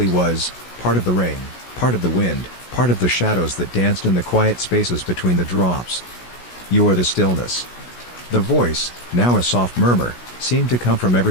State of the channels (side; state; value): right; late; 16 ms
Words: was, part of the rain, part of the wind, part of the shadows that danced in the quiet spaces between the drops. "You are the stillness." The voice, now a soft murmur, seemed to come from